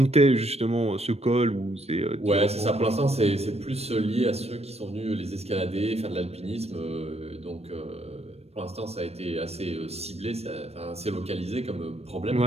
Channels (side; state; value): left; late; 0.30 ms